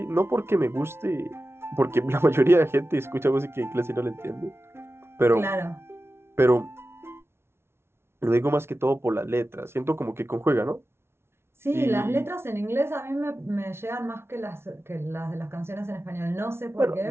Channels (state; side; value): late; left; 0.12 ms